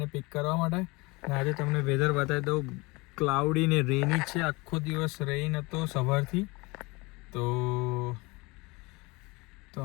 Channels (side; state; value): right; quieter; 25.0 dB